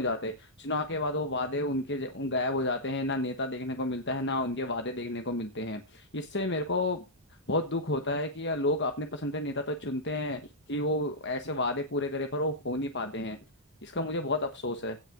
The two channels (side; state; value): both; normal; correlation -0.11